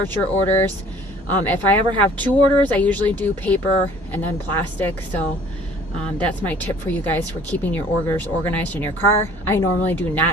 your orders. If I ever have 2 orders, I usually do paper and then plastic. So that's my tip for you guys for keeping your orders organized in your car. I normally do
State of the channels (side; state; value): both; normal; correlation 0.53